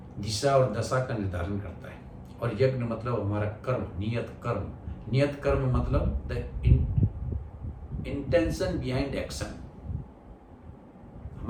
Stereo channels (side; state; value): both; identical; correlation 1.00